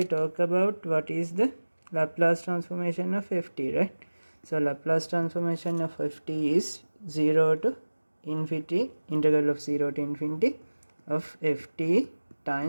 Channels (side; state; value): both; inverted; correlation -1.00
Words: talked about what is the Laplace transformation of ft, right? So Laplace transformation of ft is 0 to infinity, integral of 0 to infinity of ft